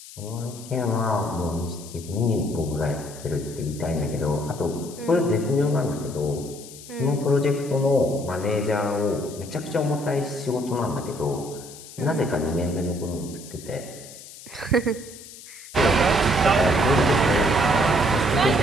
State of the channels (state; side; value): noise; left; hiss, 16 dB below the sound